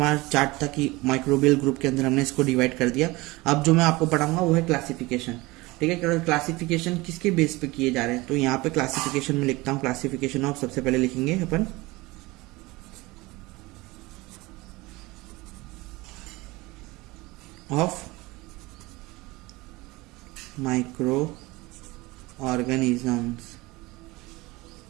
चार्ट था कि माइक्रोबियल ग्रुप के अंदर हमने इसको डिवाइड कर दिया। अब जो मैं आपको पढ़ाऊंगा वो है क्लासिफिकेशन, ठीक है। क्लासिफिकेशन किसके बेस पे किए जा रहे हैं? तो यहाँ पे क्लासिफिकेशन में लिखता हूँ क्लासिफिकेशन ऑफ, सबसे पहले लिखेंगे अपन ऑफ माइक्रो ऑर्गेनिजम्स।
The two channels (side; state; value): left; quieter; 21.8 dB